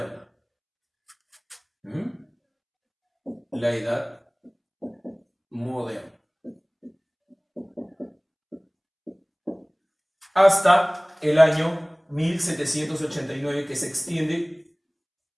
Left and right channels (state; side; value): identical; both; correlation 1.00